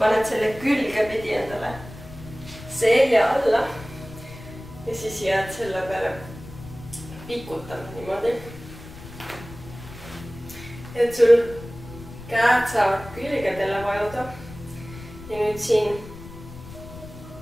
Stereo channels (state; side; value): noise; left; rumble, 15 dB below the sound